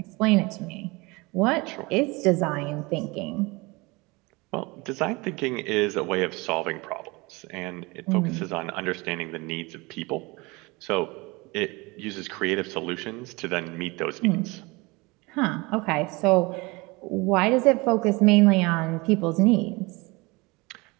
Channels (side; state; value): left; quieter; 24.9 dB